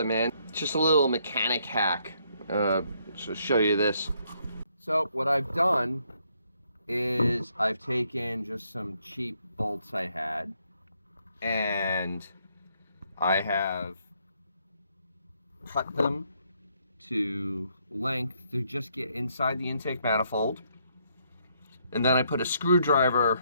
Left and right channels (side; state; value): both; inverted; correlation -0.72